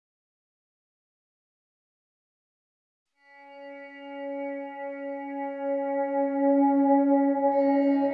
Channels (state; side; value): identical; both; correlation 1.00